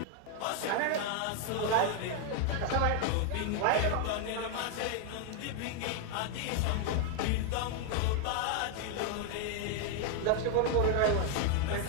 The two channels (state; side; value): different; both; correlation 0.00